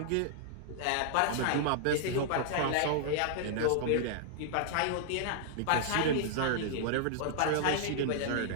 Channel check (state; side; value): different; both; correlation -0.01